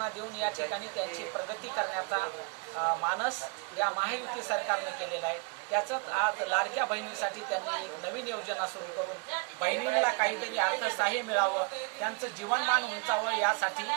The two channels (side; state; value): left; quieter; 34.2 dB